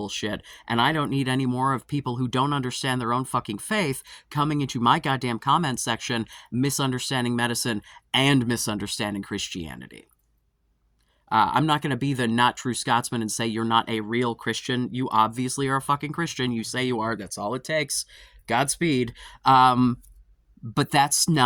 and I don't need any more of people who don't understand their own fucking faith coming into my goddamn comment section, misunderstanding medicine and misunderstanding Christianity. I'm not going to be the not true Scotsman and say you're not a real Christian. You obviously are a fucking Christian. You say you are. That's all it takes. Godspeed. But that's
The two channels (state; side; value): identical; both; correlation 1.00